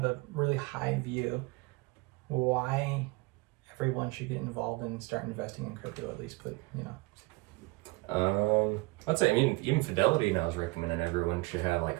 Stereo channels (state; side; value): quieter; left; 24.4 dB